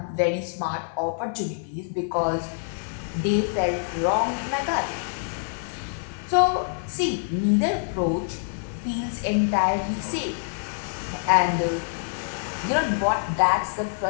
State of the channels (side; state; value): right; silent; digital silence